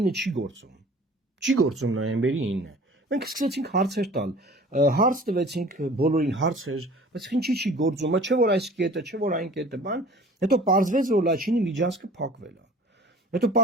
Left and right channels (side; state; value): both; normal; correlation 0.46